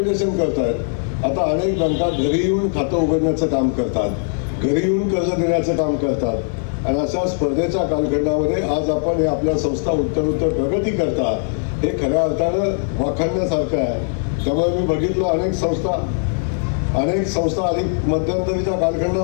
करतायत. आता अनेक बँका घरी येऊन खातं उघडण्याचं काम करतात, घरी येऊन कर्ज देण्याचं काम करतात. आणि अशा स्पर्धेच्या कालखंडामध्ये आज आपण हे आपल्या संस्था उत्तर प्रगती करतात, हे खऱ्या अर्थानं वाखाणण्यासारखं आहे. त्यामुळे मी बघितलं अनेक संस्था अधिक मध्यंतरीच्या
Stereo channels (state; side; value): silent; right; 56 dB below the other